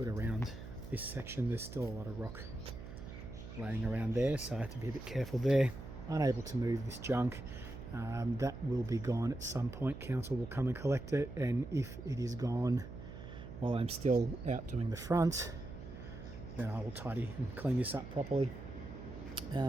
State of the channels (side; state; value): right; noise; hum, 11 dB below the sound